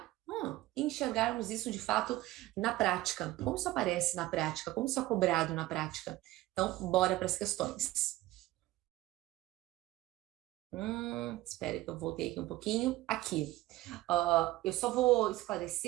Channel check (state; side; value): quieter; left; 17.1 dB